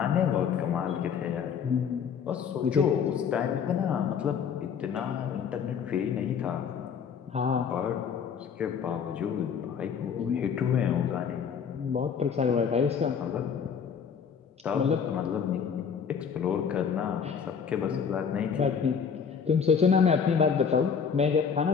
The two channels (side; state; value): right; quieter; 6.8 dB